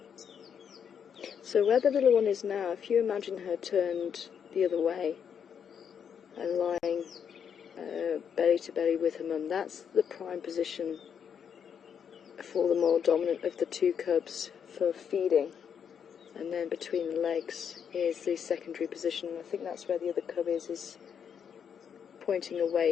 So where the little one is now, if you imagine her turned the other way and lying belly to belly with her mum, that's the prime position for the more dominant of the two cubs for feeding. And then between the legs is the secondary position. I think that's where the other cub is pointing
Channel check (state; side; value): quieter; right; 7.6 dB